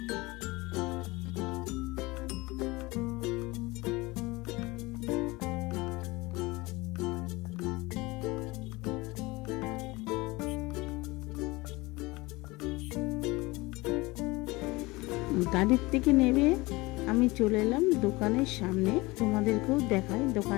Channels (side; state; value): right; quieter; 22.3 dB